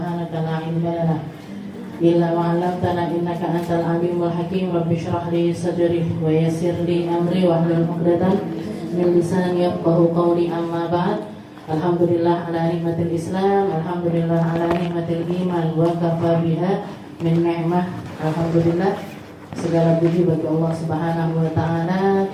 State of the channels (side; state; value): both; identical; correlation 1.00